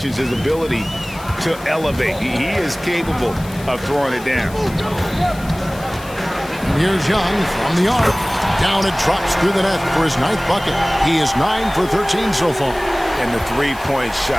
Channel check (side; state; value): left; noise; hiss, 19 dB below the sound